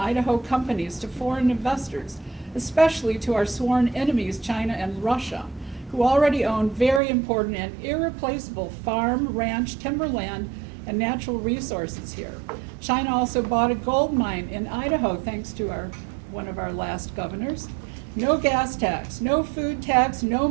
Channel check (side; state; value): left; drops out; at 7.0 s